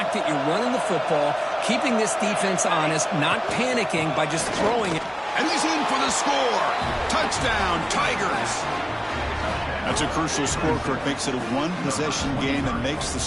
that you're running the football, keeping this defense honest, not panicking by just throwing it. And he's in for the score. Touchdown, Tigers. That's a crucial score, Kirk. Makes it a 1-possession game and makes the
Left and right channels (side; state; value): both; identical; correlation 1.00